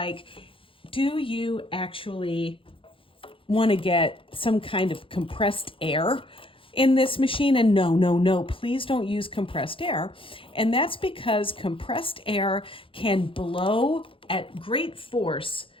do you actually want to get some kind of compressed air in this machine? And no, please don't use compressed air. And that's because compressed air can blow at great force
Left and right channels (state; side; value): late; right; 0.25 ms